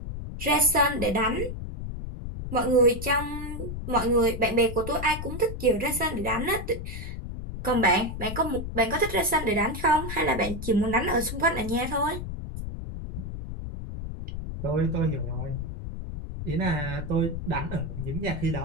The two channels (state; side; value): noise; left; rumble, 7 dB below the sound